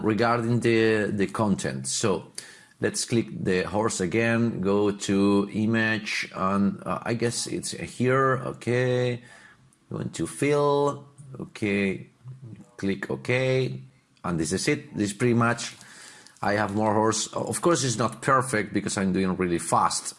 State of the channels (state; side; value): identical; both; correlation 1.00